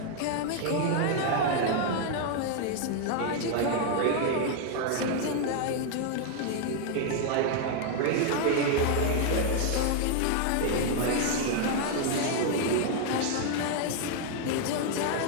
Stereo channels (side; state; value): both; different; correlation 0.00